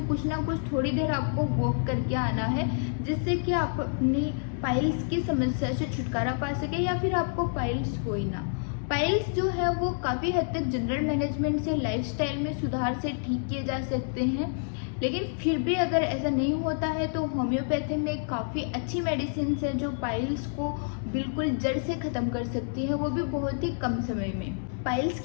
कुछ ना कुछ थोड़ी देर आपको वॉक करके आना है, जिससे कि आप अपनी पाइल्स की समस्या से छुटकारा पा सके या फिर आपको पाइल्स हो ही ना। पाइल्स जो है वो काफ़ी हद तक जनरल मैनेजमेंट से, लाइफस्टाइल में सुधार से ठीक किए जा सकते हैं, लेकिन फिर भी अगर ऐसा नहीं होता है तो होम्योपैथी में काफ़ी अच्छी मेडिसिन है जो पाइल्स को बिल्कुल जड़ से ख़त्म कर सकती है, वो भी बहुत ही कम समय में। पाइल्स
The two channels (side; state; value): right; silent; digital silence